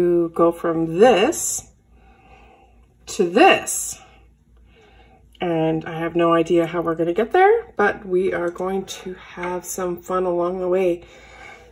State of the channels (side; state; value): both; identical; correlation 1.00